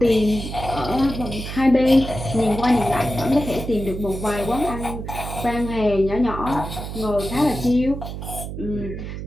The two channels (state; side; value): noise; right; hum, 7 dB below the sound